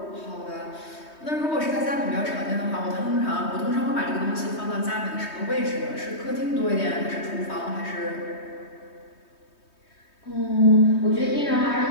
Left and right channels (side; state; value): right; late; 3.2 ms